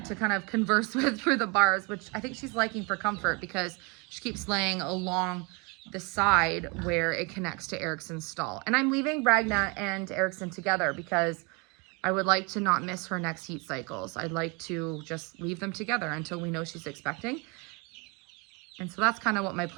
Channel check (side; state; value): left; quieter; 30.2 dB